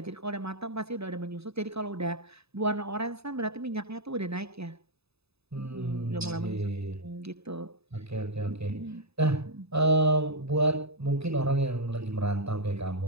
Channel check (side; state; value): left; late; 0.79 ms